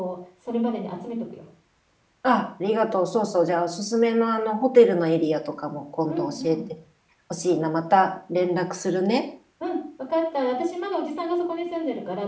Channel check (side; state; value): both; identical; correlation 1.00